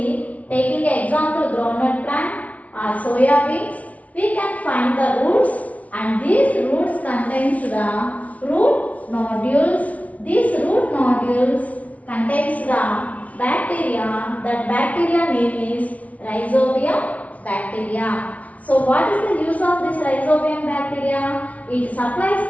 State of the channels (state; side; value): late; right; 0.068 ms